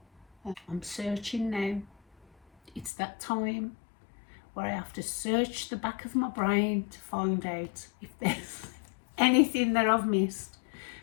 I'm searching now. It's that time where I have to search the back of my brain to find out if there's anything that I've missed,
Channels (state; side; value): drops out; right; at 2.9 s